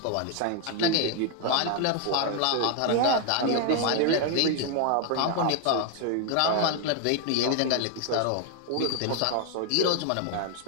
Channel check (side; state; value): both; different; correlation 0.00